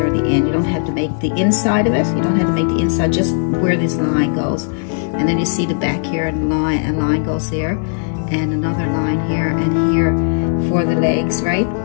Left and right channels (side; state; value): right; silent; 68 dB below the other